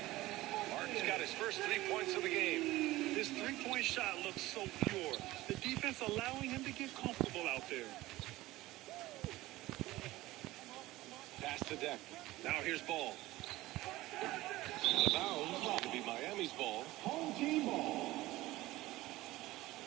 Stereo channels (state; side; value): quieter; left; 17.9 dB